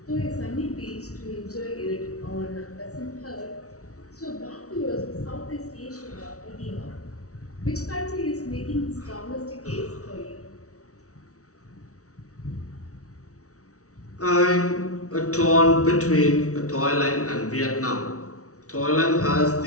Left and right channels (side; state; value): right; late; 0.65 ms